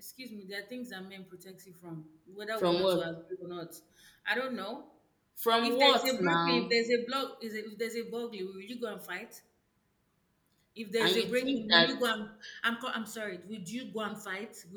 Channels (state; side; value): identical; both; correlation 1.00